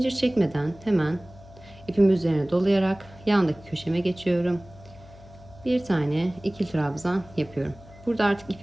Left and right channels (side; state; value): left; noise; hum, 21 dB below the sound